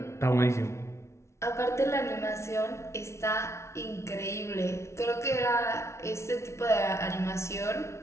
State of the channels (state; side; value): late; right; 0.13 ms